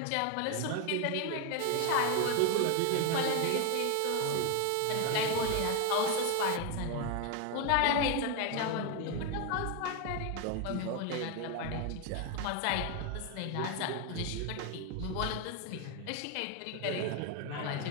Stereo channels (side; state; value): both; different; correlation 0.01